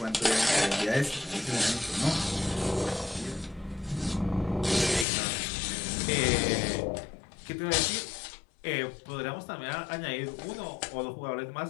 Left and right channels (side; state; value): right; drops out; at 5.1 s